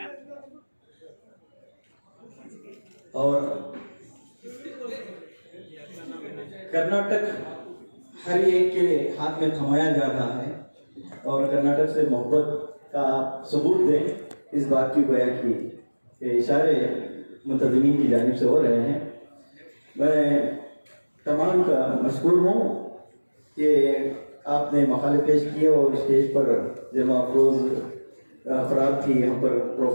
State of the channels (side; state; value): both; inverted; correlation -1.00